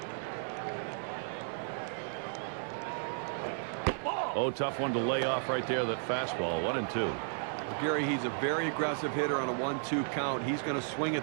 Oh, tough one to lay off right there, that fastball. 1-2. Well, Gary, he's a very aggressive hitter on a 1-2 count. He's going to swing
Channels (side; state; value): left; silent; 55 dB below the other